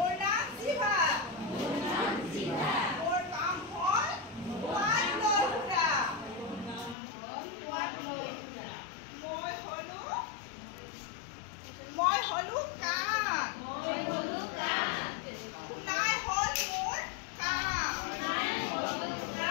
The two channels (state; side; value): drops out; right; at 7.0 s